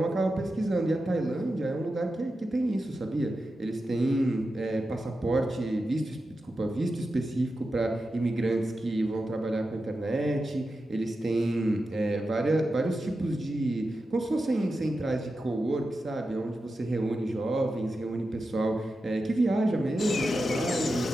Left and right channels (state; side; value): normal; both; correlation 0.91